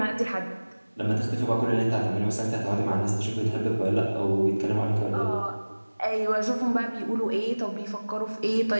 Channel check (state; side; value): inverted; both; correlation -1.00